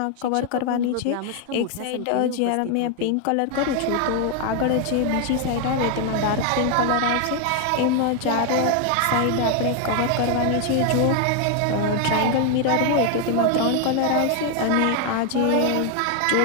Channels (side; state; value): both; different; correlation 0.00